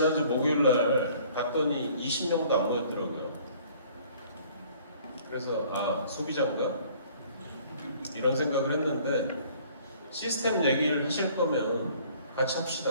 목요일날 갔더니 20명도 안 모였더라고요. 그래서 소비자인가? 이런 생각을 했는데 시스템 얘기를 하실 거면 같이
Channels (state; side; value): inverted; both; correlation -0.55